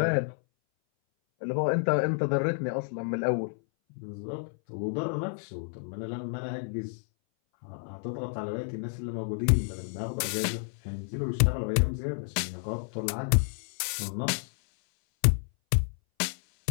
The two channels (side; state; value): right; silent; 58 dB below the other